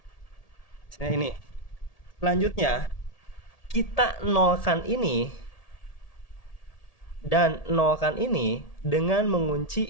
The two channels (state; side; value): late; right; 1.8 ms